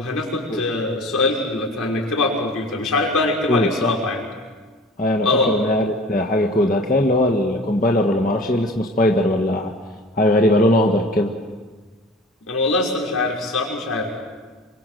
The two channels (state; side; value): normal; both; correlation 0.41